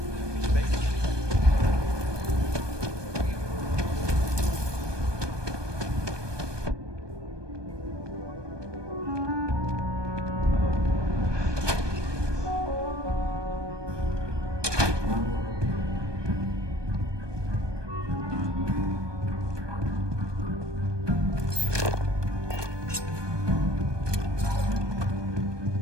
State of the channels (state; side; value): late; left; 1.2 ms